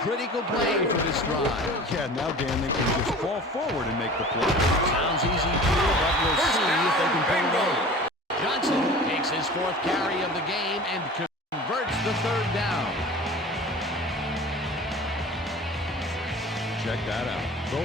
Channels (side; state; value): both; normal; correlation 0.40